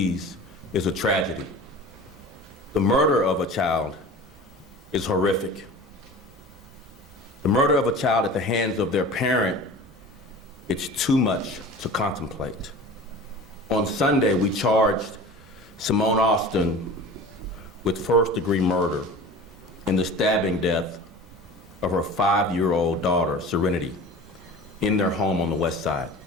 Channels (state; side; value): normal; both; correlation 0.38